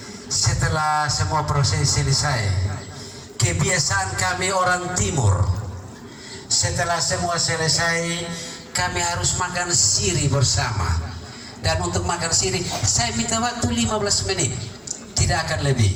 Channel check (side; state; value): both; identical; correlation 1.00